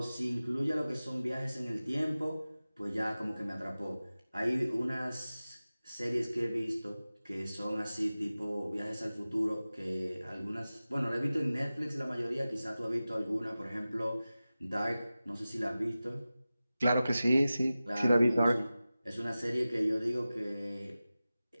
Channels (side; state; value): both; inverted; correlation -0.96